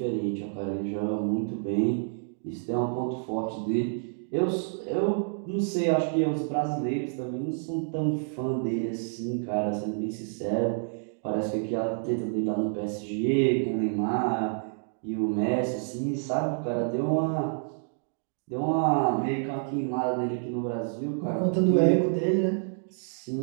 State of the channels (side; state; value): left; silent; digital silence